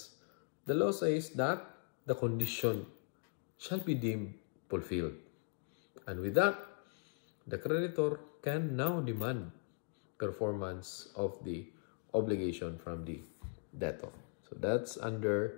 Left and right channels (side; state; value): right; silent; 52 dB below the other